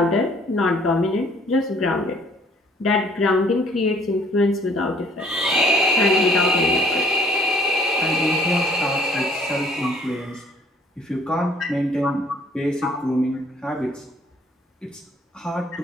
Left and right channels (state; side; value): normal; both; correlation 0.59